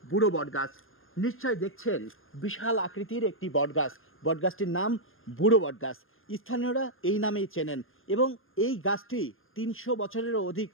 বুড়ো বটগাছ। নিশ্চয় দেখছেন বিশাল আকৃতির একটি বটগাছ। বটগাছটির নাম বুড়ো বটগাছ। স্থানীয়রা এই নামেই চেনেন এবং এই গাছটি ৩০০ বছরেরও অধিক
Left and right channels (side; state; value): right; late; 0.60 ms